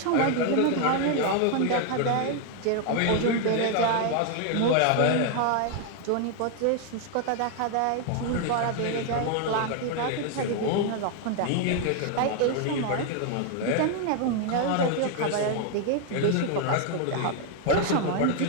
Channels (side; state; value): both; different; correlation 0.01